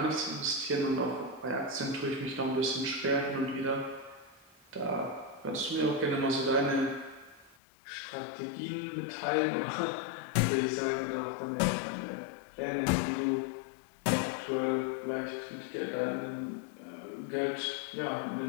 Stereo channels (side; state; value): right; drops out; at 7.6 s